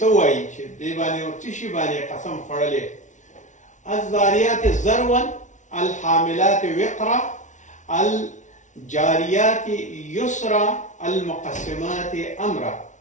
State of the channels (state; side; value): late; right; 0.36 ms